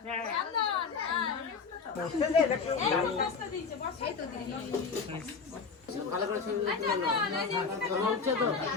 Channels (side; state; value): right; quieter; 5.2 dB